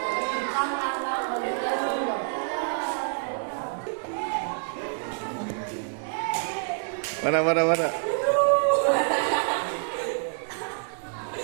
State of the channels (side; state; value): left; silent; 60 dB below the other